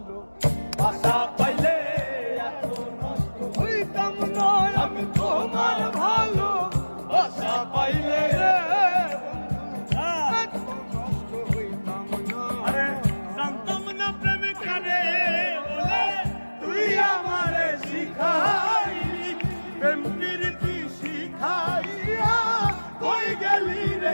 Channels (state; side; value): inverted; both; correlation -1.00